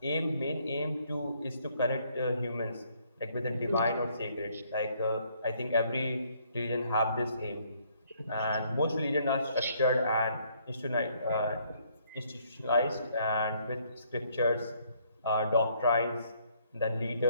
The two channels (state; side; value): inverted; both; correlation -0.67